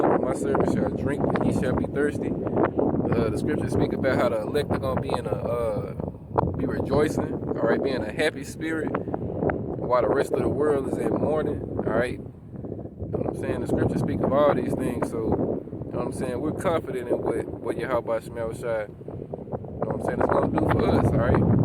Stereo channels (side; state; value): both; identical; correlation 1.00